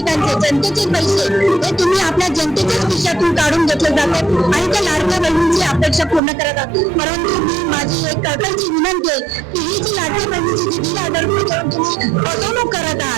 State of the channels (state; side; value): drops out; left; at 6.2 s